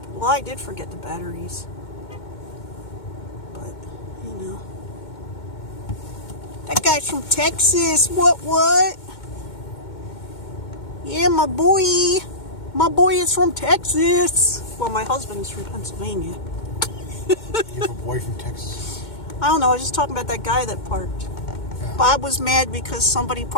I did forget the batteries. But, you know. That guy's from Texas. What? Yeah, my boy. My boy is from Texas. Well, my husband's from Pennsylvania. You have a boy from Texas? I don't know. I was just talking about that guy that parked. Yeah. Bob was mad because somebody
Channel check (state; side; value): late; right; 2.2 ms